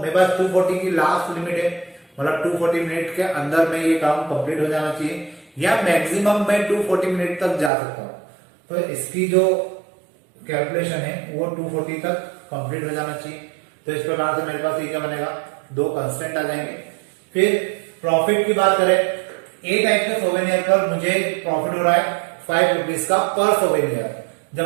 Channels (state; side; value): drops out; left; at 7.7 s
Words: पास 240 की लास्ट लिमिट है, मतलब 240 मिनट के अंदर में ये काम कंप्लीट हो जाना चाहिए, या मैक्सिमम मैं 240 मिनट तक जा सकता हूं। तो इसकी जो कैलकुलेशन है वो 240 तक कंप्लीट हो जाना चाहिए। तो इस प्रकार से मेरे पास ये क्या बनेगा, 2 कंस्टेंट आ जाएंगे। फिर प्रॉफिट की बात करें, ए टाइप के सोवेनियर पर मुझे प्रॉफिट हो रहा है 5 रुपीज का पर सोवेनियर,